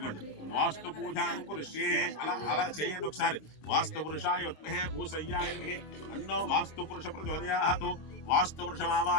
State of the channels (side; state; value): right; late; 26 ms